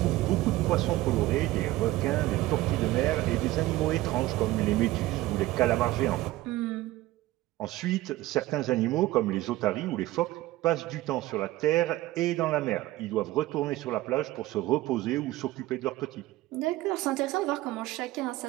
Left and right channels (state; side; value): quieter; left; 17.3 dB